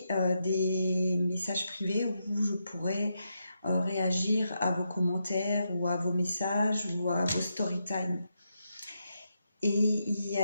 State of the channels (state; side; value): inverted; both; correlation -0.83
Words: des messages privés où je pourrais réagir à vos commentaires ou à vos messages ou à vos story time. Et il y